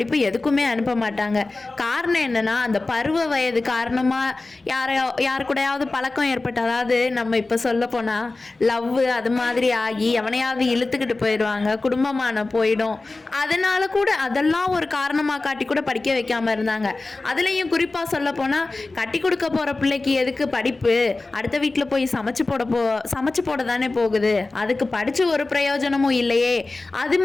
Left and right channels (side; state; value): right; quieter; 3.3 dB